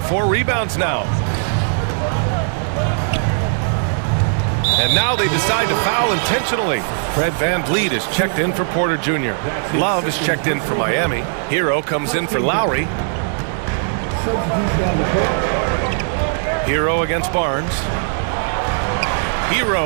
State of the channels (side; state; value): left; silent; digital silence